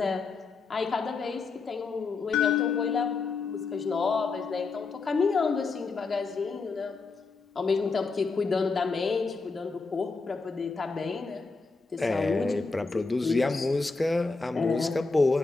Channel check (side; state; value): right; quieter; 4.2 dB